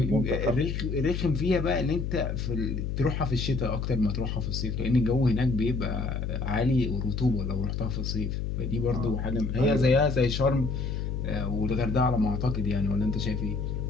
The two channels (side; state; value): left; noise; hum, 2 dB below the sound